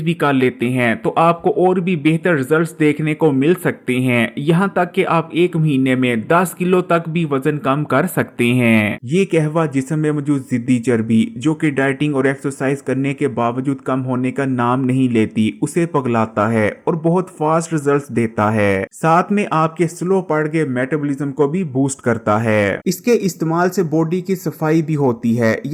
भी कर लेते हैं तो आपको और भी बेहतर रिजल्ट्स देखने को मिल सकते हैं। यहाँ तक कि आप 1 महीने में 10 किलो तक भी वजन कम कर सकते हैं। ये कहवा जिस्म में मौजूद जिद्दी चर्बी जो कि डाइटिंग और एक्सरसाइज करने के बावजूद कम होने का नाम नहीं लेती, उसे पगलाता है और बहुत फास्ट रिजल्ट्स देता है। साथ में आपके स्लो बढ़ गए मेटाबॉलिज्म को भी बूस्ट करता है। इसके इस्तेमाल से बॉडी की सफाई भी होती है,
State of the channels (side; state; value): both; identical; correlation 1.00